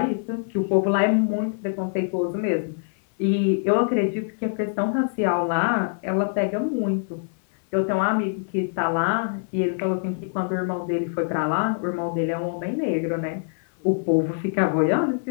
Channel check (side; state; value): right; silent; 62 dB below the other